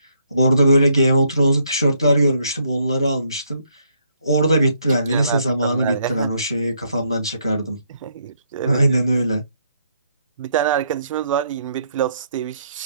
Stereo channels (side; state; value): both; inverted; correlation -0.71